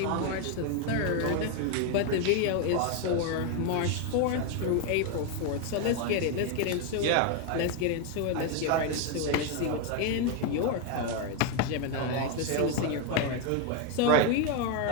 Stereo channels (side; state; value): both; different; correlation 0.01